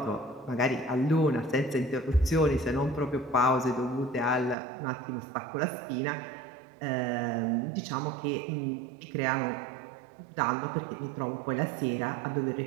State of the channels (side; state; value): left; drops out; at 4.5 s